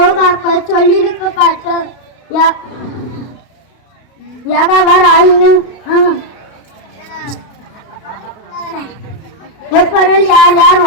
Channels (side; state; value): right; late; 32 ms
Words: சொல்லிழுக்கப்பட்டு யாகாவார் ஆயினும் எப்பொருள் யார் யார்